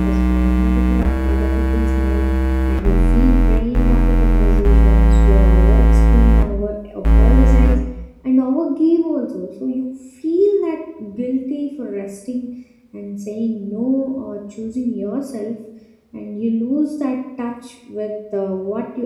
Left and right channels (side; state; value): both; identical; correlation 1.00